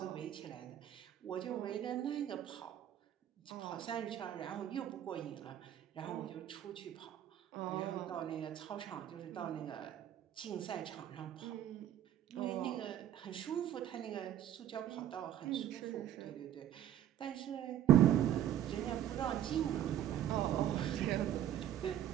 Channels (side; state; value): left; quieter; 11.3 dB